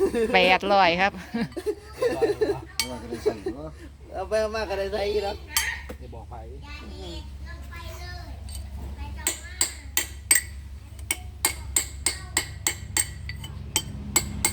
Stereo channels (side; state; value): both; identical; correlation 1.00